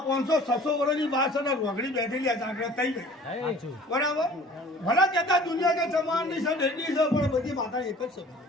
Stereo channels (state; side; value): normal; both; correlation 0.48